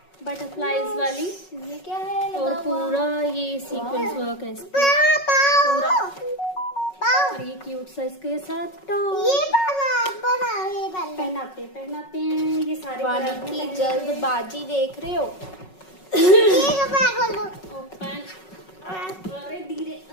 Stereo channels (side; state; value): right; late; 5.4 ms